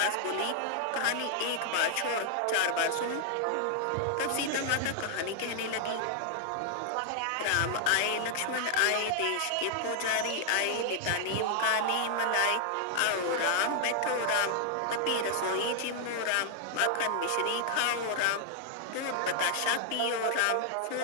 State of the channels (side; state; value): both; different; correlation 0.00